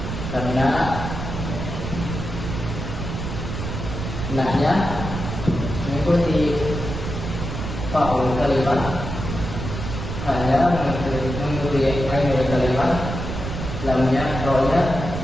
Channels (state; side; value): noise; right; rumble, 5 dB below the sound